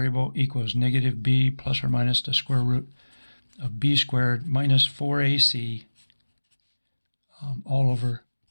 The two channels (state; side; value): inverted; both; correlation -1.00